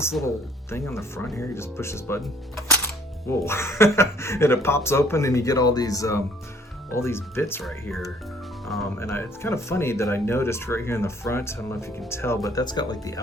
little thing on the front here. You just push this button. Whoa, and it pops open and you get all these bits right here. It's kind of funny that I noticed right here in the front, I don't know if you can tell, but that's got like the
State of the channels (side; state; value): both; normal; correlation 0.59